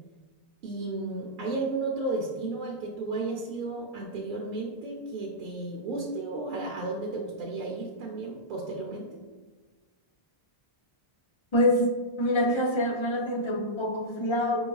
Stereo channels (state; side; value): late; right; 1.3 ms